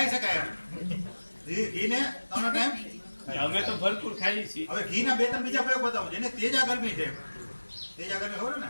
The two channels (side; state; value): both; inverted; correlation -1.00